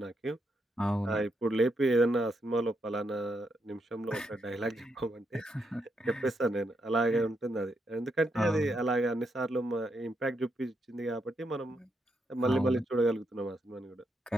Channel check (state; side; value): normal; both; correlation 0.80